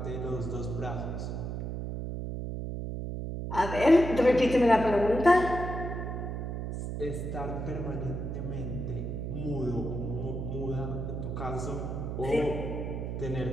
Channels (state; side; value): noise; right; hum, 4 dB below the sound